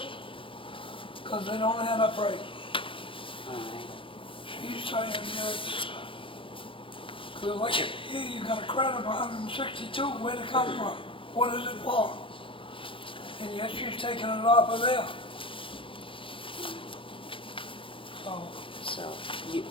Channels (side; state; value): right; late; 0.25 ms